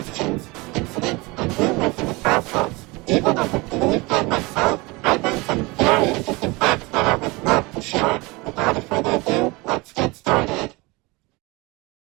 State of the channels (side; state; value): left; quieter; 24.5 dB